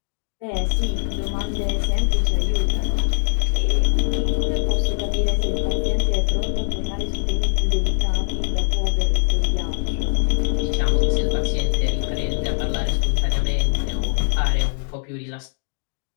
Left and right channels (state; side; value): silent; right; digital silence